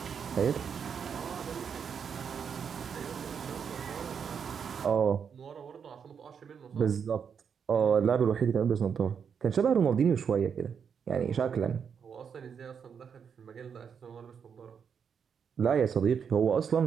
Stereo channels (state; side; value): quieter; left; 7.0 dB